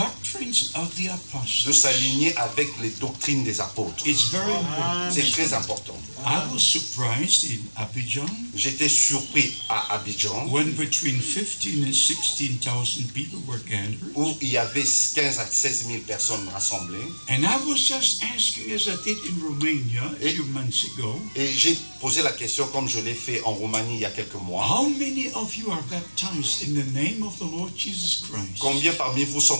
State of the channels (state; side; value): inverted; both; correlation -1.00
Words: of the de apostles. s'aligner avec les doctrines des apôtres. It's very important. C'est très important. I was surprised in Abidjan J'étais surpris à Abidjan, when between 15 and 16,000 people were gathered. où il y avait 15 à 16 000 personnes rassemblées. And I was just asking, as I did in Romania a few months ago, Et j'ai posé la question, comme je l'ai fait en Roumanie il y a quelques mois, how many of you are baptized in the name of the Lord Jesus Christ? combien parmi vous sont